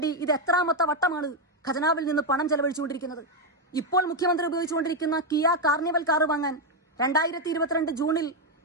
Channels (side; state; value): both; normal; correlation 0.03